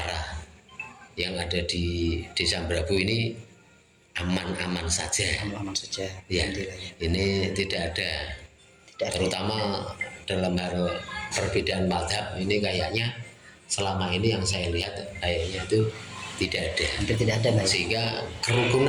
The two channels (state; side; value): identical; both; correlation 1.00